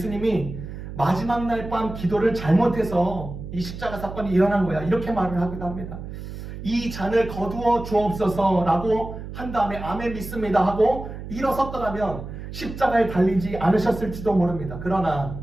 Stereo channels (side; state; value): right; noise; hum, 10 dB below the sound